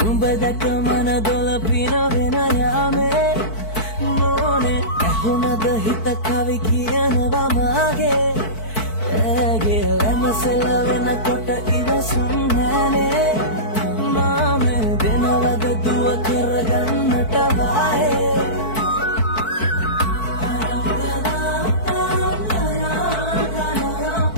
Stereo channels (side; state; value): right; late; 4.6 ms